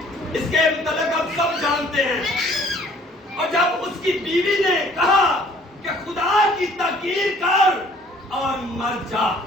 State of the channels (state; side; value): normal; both; correlation 0.56